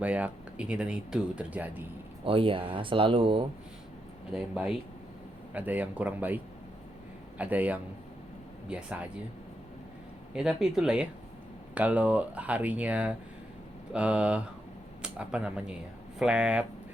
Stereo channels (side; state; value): both; normal; correlation 0.82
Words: ini dan itu terjadi. Oh iya, selalu. Ada yang baik, ada yang kurang baik, ada yang biasa aja. Ya tapi itulah ya. Kalau harinya apa namanya ya, flat,